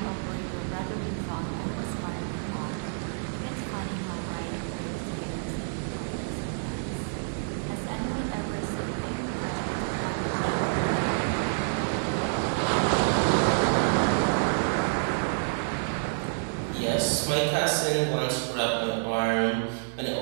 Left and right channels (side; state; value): left; silent; 59 dB below the other